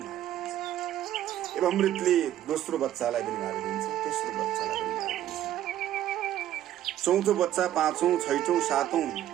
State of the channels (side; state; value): left; quieter; 12.3 dB